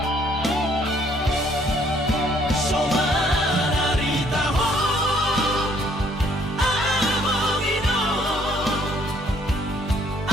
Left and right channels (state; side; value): normal; both; correlation 0.64